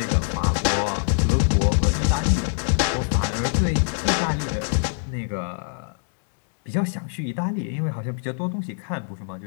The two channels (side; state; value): right; silent; digital silence